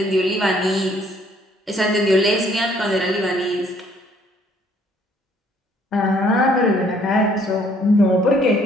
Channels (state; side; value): normal; both; correlation 0.63